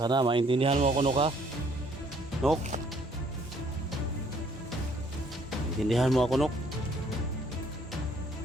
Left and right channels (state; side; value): normal; both; correlation 0.63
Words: Sana maintindihan mo ako, Nok, ha? Nok? Maintindihan mo ako, Nok?